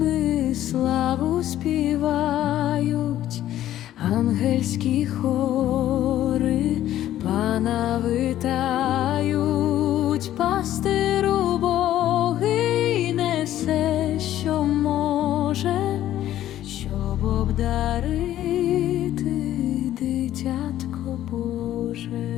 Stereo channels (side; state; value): right; quieter; 12.8 dB